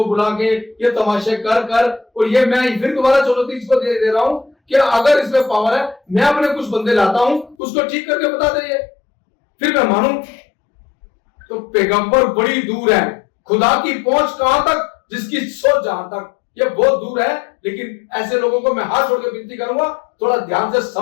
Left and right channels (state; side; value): drops out; right; at 7.6 s